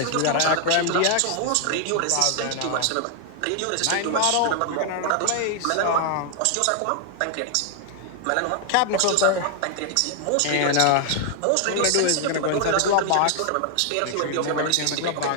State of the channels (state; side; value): different; both; correlation 0.00